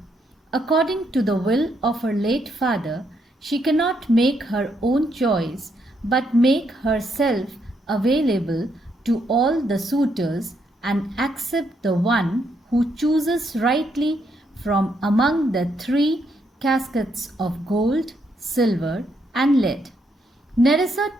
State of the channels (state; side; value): normal; both; correlation 0.76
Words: According to the will of her late father, she cannot make her own choice but make herself available to all the suitors and accept the one who chooses rightly from among the 3 caskets of gold, silver and lead. Nerissa